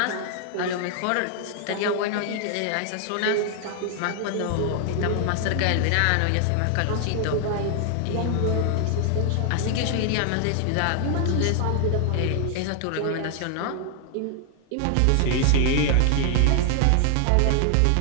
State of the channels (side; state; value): both; different; correlation 0.00